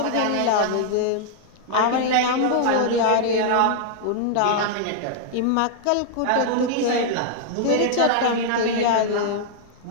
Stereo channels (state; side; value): different; both; correlation -0.01